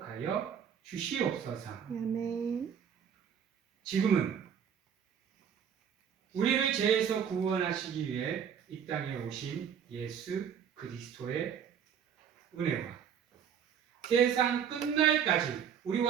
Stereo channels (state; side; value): quieter; left; 8.1 dB